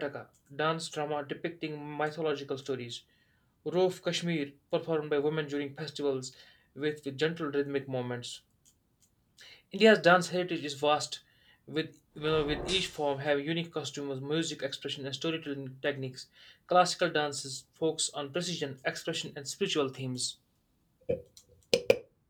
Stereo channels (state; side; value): identical; both; correlation 1.00